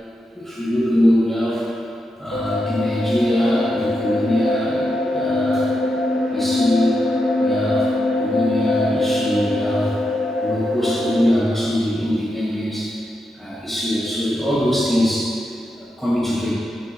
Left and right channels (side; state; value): both; normal; correlation 0.85